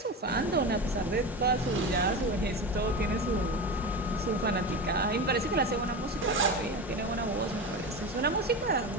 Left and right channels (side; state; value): both; normal; correlation 0.24